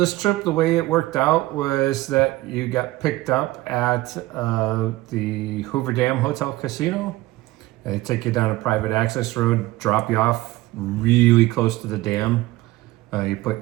trip, the way it worked out was that you got picked up at the Hoover Dam Hotel Casino. They take you down a private access road, drop you off really close to the dam. You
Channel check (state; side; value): quieter; left; 18.2 dB